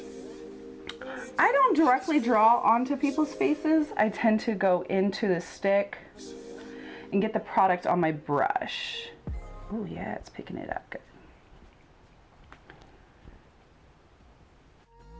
I don't directly draw onto people's faces. I tend to go into the stick and get the product on my brush. Oh yeah, it's picking it up good.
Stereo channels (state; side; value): identical; both; correlation 1.00